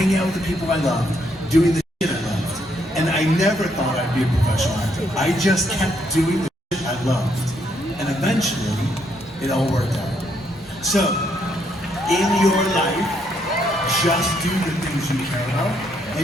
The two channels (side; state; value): both; normal; correlation 0.73